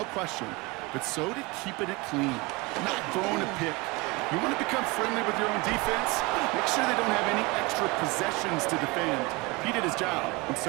question. But so did keeping it clean, not throwing a pick. You want to become friendly with your own defense? Make sure they don't have any extra possessions to defend. He did his job, and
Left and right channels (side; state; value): left; quieter; 24.8 dB